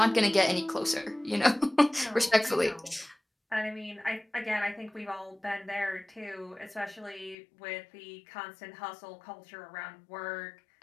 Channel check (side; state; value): right; drops out; at 7.4 s